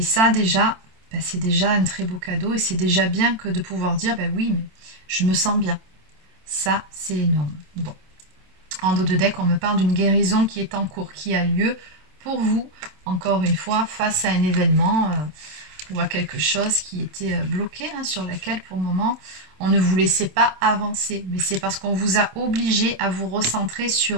ça déjà, ben, c'est déjà un très beau cadeau, et c'est déjà bien que de pouvoir dire, ben oui, mais je me sens bien. Ça, c'est énorme. Bon. En dos de deck, on me parle d'une guérison qui est en cours, qui a lieu pour vous, encore une fois, face à un événement ou à quelque chose qui était bloqué, hein, sur laquelle pour le moment on ne vous laissait pas avancer. Mais c'est parce qu'on vous a obligé à vous recentrer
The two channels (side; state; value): left; late; 27 ms